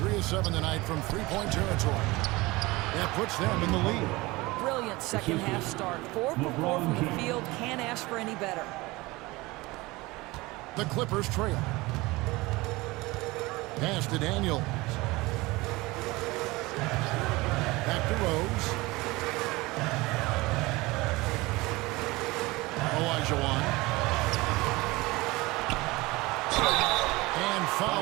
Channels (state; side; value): quieter; left; 21.7 dB